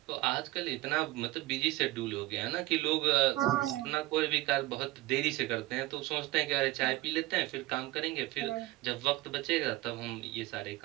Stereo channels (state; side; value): quieter; left; 18.7 dB